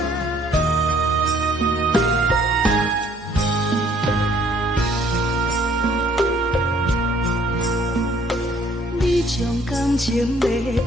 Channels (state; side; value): normal; both; correlation 0.61